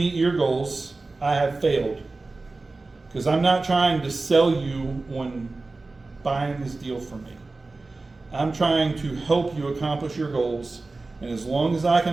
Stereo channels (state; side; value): quieter; left; 3.5 dB